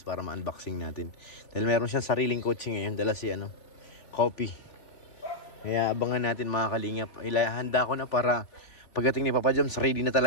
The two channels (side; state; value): right; late; 3.7 ms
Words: para ma-unboxing natin. Dahil meron siyang sariling coaching ngayon, dala si coffee. Kaya abangan natin mga kalingap. Handa ko na para pagdating ni Papa Joms, ready na